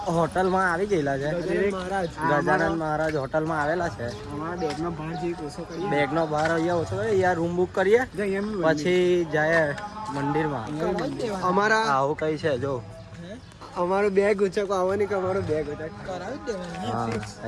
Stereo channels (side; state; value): both; identical; correlation 1.00